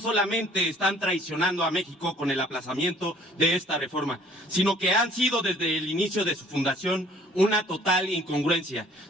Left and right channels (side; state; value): both; normal; correlation 0.55